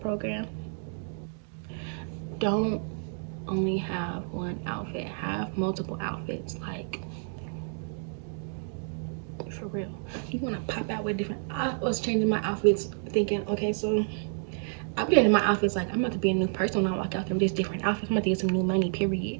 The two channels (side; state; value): left; silent; 58 dB below the other